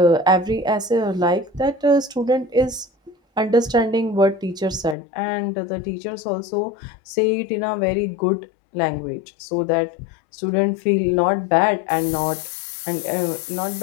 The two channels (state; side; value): drops out; right; at 5.0 s